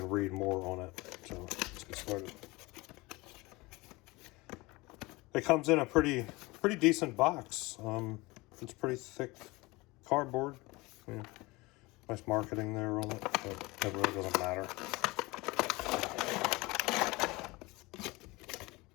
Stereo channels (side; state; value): right; quieter; 22.9 dB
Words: read more on it. So let's get started. It comes in a pretty decent box. It's pretty thick cardboard. Yeah. Nice marketing there on it, but it really doesn't matter.